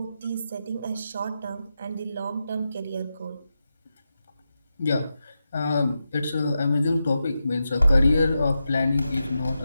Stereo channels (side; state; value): both; inverted; correlation -0.89